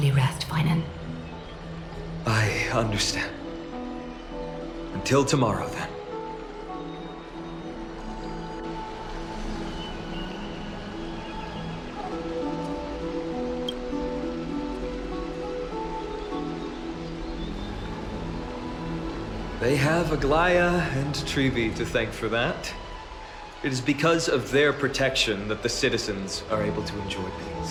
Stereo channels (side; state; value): both; identical; correlation 1.00